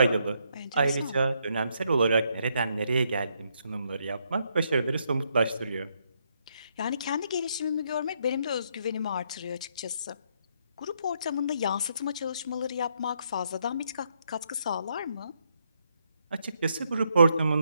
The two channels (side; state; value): both; inverted; correlation -0.75